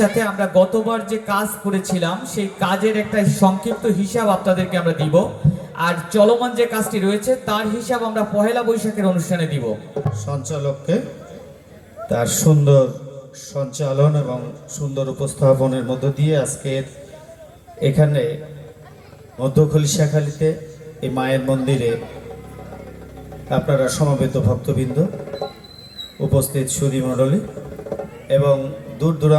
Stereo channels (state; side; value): identical; both; correlation 1.00